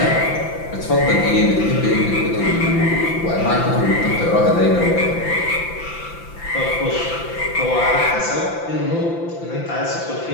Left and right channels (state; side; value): late; right; 5.9 ms